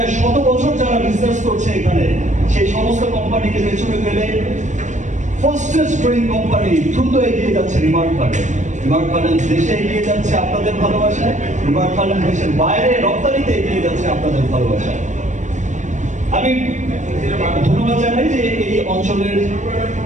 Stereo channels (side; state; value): left; late; 0.35 ms